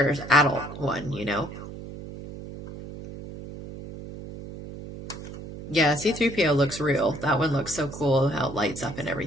adult one, you know? Yeah, C3PO looks real. That one looks so cool, how it lights up and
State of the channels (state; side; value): noise; right; hum, 12 dB below the sound